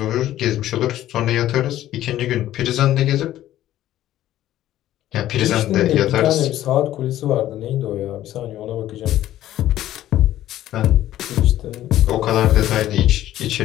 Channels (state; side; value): quieter; right; 13.4 dB